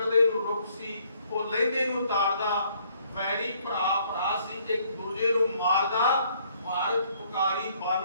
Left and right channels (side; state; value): both; inverted; correlation -0.65